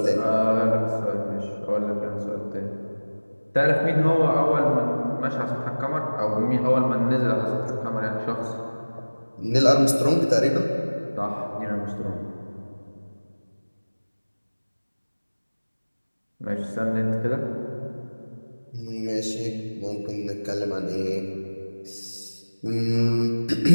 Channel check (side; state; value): both; inverted; correlation -1.00